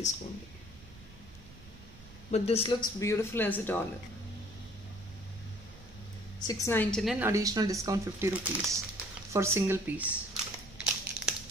But this looks beautiful as a dollar. 699, additional discount 50 rupees for single piece.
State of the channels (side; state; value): right; noise; rumble, 20 dB below the sound